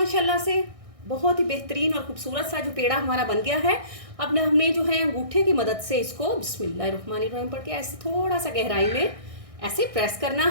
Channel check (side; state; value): left; late; 1.6 ms